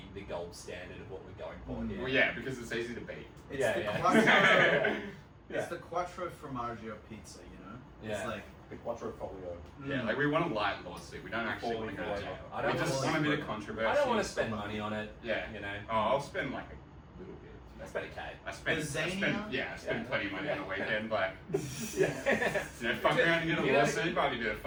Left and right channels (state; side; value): identical; both; correlation 1.00